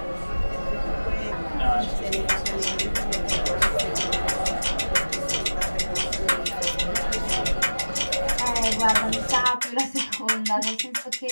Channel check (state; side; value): inverted; both; correlation -1.00